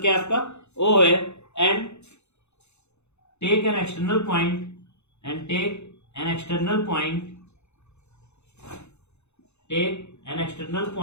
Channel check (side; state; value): right; late; 0.81 ms